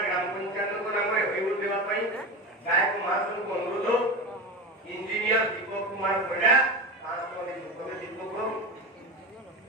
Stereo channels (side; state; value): both; normal; correlation 0.24